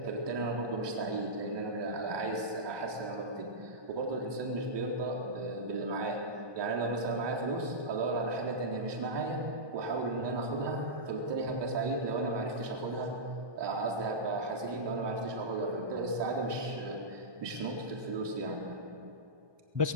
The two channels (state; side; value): late; left; 1.2 ms